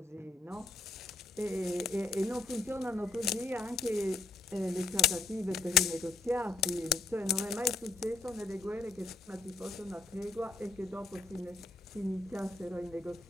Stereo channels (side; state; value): right; quieter; 3.5 dB